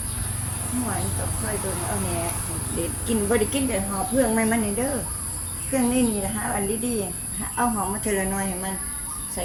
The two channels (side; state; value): both; identical; correlation 1.00